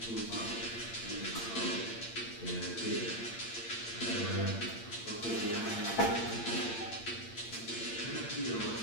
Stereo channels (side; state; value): right; late; 8.7 ms